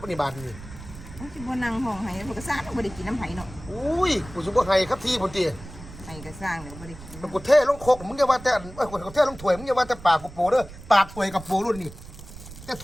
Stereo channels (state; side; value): noise; right; rumble, 15 dB below the sound